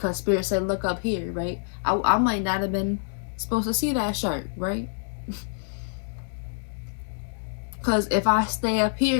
Spirit said look up here, right? I might not have been supposed to see that shark, right? Because if I stay up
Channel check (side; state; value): right; silent; digital silence